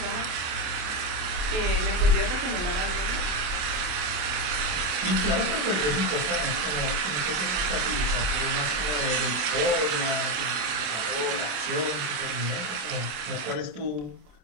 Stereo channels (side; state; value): left; late; 27 ms